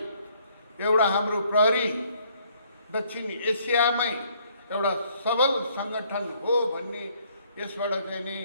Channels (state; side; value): inverted; both; correlation -0.65